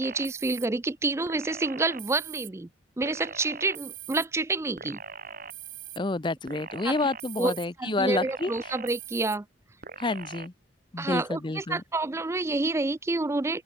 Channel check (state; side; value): normal; both; correlation 0.40